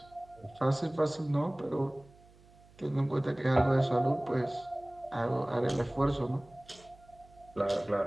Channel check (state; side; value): noise; right; hum, 26 dB below the sound